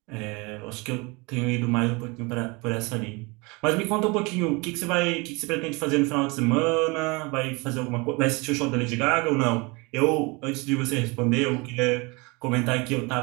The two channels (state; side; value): quieter; left; 27.1 dB